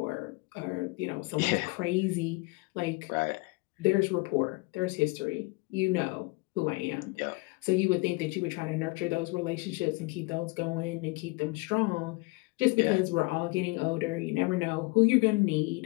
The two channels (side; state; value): right; quieter; 25.3 dB